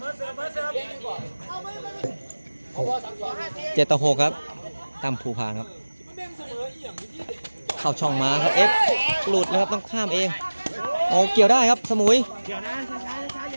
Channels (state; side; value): inverted; both; correlation -1.00